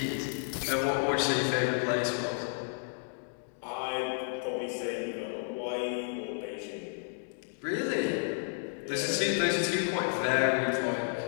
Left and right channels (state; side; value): silent; right; digital silence